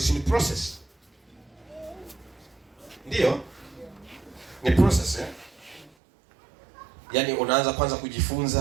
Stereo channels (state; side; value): drops out; left; at 5.9 s